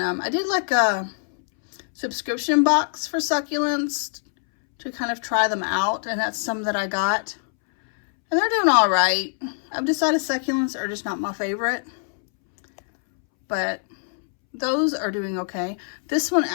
I did like a subscription box for succulents to kind of try them out, and that's some that I got. And they're doing all right. I've decided succulents are just not my favorite, but those are doing okay. This one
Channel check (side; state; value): right; silent; 63 dB below the other